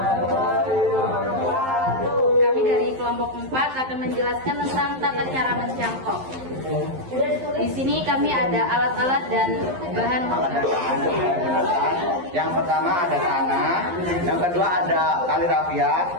Kami dari kelompok 4 akan menjelaskan tentang tata cara mencangkok. Di sini kami ada alat-alat dan bahan. Yang pertama ada tanah, yang kedua ada tali rafia,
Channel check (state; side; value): late; left; 11 ms